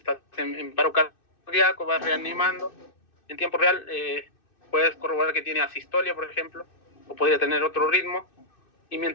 en paro cardíaco, va reanimando. En tiempo real puedes corroborar que tiene asistolia, por ejemplo, o podría tener otro ritmo. Y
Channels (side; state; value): right; late; 2.6 ms